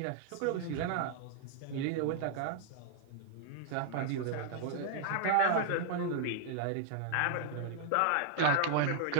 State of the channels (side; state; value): both; different; correlation -0.01